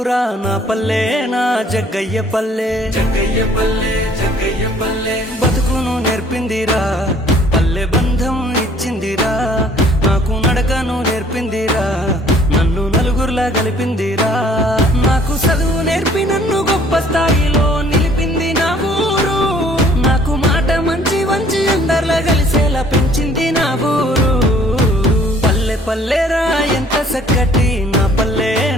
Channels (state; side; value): normal; both; correlation 0.58